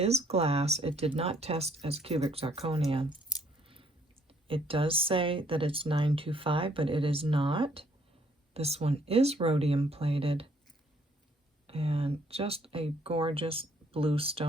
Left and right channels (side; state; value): both; normal; correlation 0.66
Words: glass. It did not test as cubic zirconia. It does say that it's 925, but it is not. This one is rhodium plated, and just a gorgeous blue